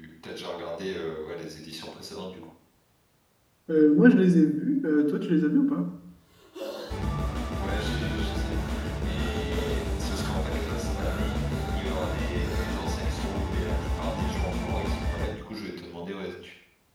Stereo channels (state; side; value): identical; both; correlation 1.00